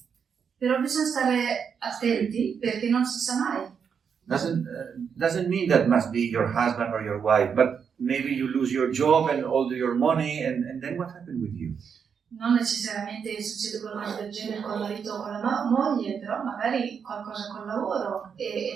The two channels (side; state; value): left; quieter; 6.8 dB